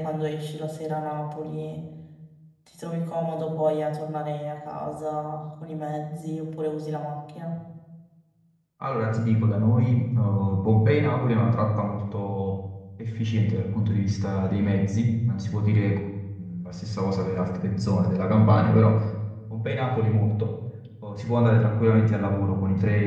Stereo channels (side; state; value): both; identical; correlation 1.00